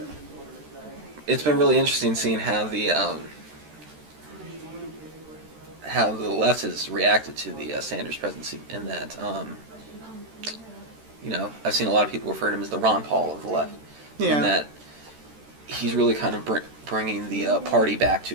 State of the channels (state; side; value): late; left; 13 ms